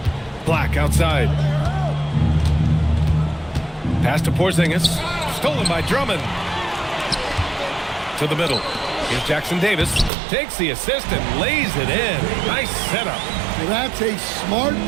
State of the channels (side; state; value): left; drops out; at 10.1 s